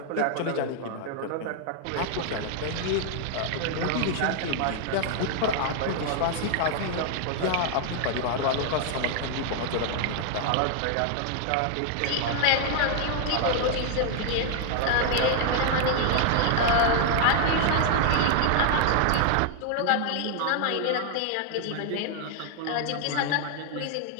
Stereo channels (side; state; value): both; different; correlation 0.00